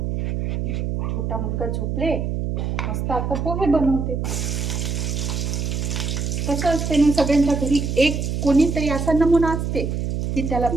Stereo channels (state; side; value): noise; right; hum, 1 dB below the sound